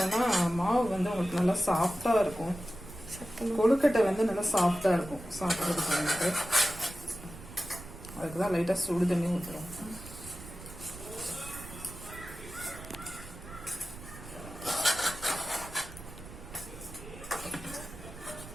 மாவு உங்களுக்கு நல்லா சாஃப்டாக இருக்கும். கொழுக்கட்டை நல்லா சாஃப்டாக இருக்கும் சாப்பிட்றதுக்கு. அதுக்கு தான் லைட்டாக சுடு தண்ணி ஊற்றுறோம்.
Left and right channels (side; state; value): right; noise; rumble, 14 dB below the sound